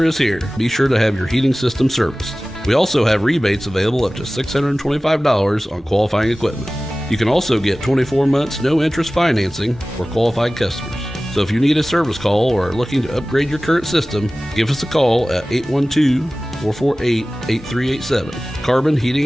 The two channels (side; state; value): both; normal; correlation 0.97